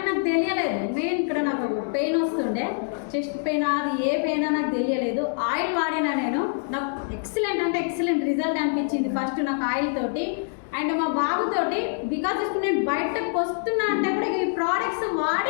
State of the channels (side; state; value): right; silent; digital silence